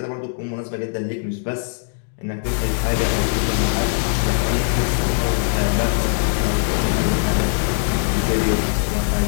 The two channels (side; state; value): right; silent; 65 dB below the other